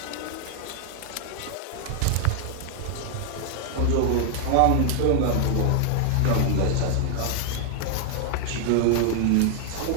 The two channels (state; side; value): different; both; correlation 0.00